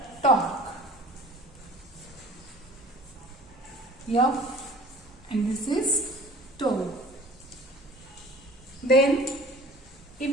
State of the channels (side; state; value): both; normal; correlation 0.46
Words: torque, F, and this is tau. Then